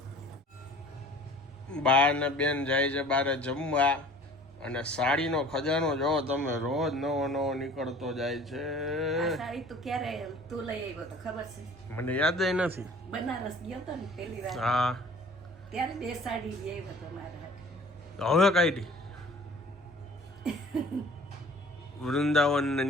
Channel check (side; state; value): both; normal; correlation 0.48